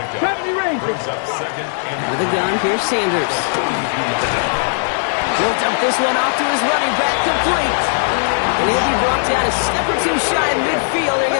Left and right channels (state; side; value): silent; right; digital silence